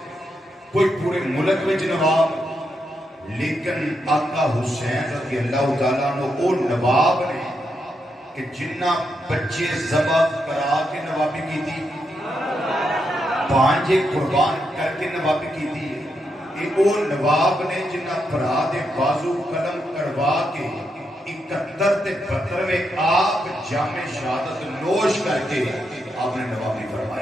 کوئی پورے ملک وچ نواب، لیکن آقا حسین رضی اللہ تعالیٰ عنہ وہ نواب نے کہ جنہ بچے ذبح کرا کے نوابی کی تھی، پانچے قربان کر کے نوابی کی تھی، کہ وہ نواب نے جنہ پرا دے بازو قلم کروا کے 71 تے 72 میں آپ جام شہادت نوش کر کے آپ نے نوابی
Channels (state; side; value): normal; both; correlation 0.82